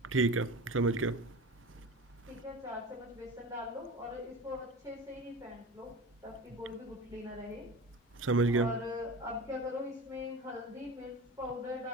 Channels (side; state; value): both; normal; correlation 0.32